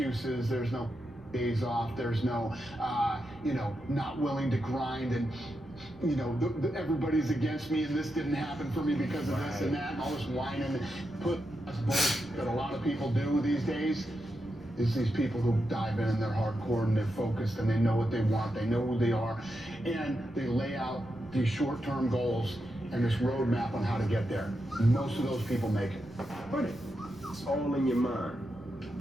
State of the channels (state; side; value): noise; right; rumble, 24 dB below the sound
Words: there's no days off, there's no, not willing to grind and, everybody's against me and this didn't happen for me because of this and that and all this whining. That's bullshit that a lot of people do these days. It's these people who dive in and they're hardcore and they're focused and they know what they want, they know who they are, and they lay out these short-term goals and this roadmap on how to get there. Most of those people make it. But it's all in your mind.